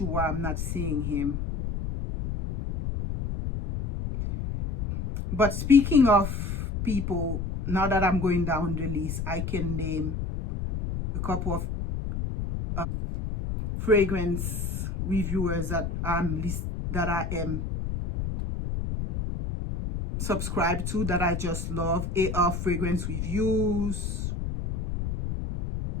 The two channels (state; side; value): noise; left; rumble, 3 dB below the sound